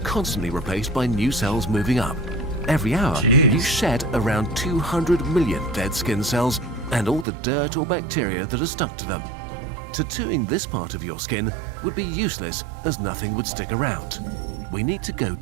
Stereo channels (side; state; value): left; drops out; at 7.2 s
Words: replaced by new cells moving up. Every hour, Jeez. you shed around 200 million dead skin cells and all the dirt or bacteria that are stuck to them. Tattooing this part of your skin would be useless as nothing would stick around. We need to go